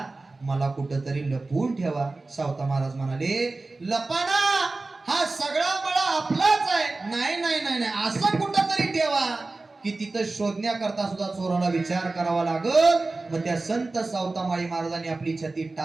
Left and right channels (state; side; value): quieter; left; 3.4 dB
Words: मला कुठंतरी लपवून ठेवा. सावता महाराज म्हणाले, लपाना, हा सगळा मळा आपलाच आहे. नाही नाही नाही नाही, असं कुठंतरी ठेवा की तिथं शोधण्याकरता सुद्धा चोराला विचार करावा लागल. मग त्या संत सावतामाळी महाराजांनी आपली छाती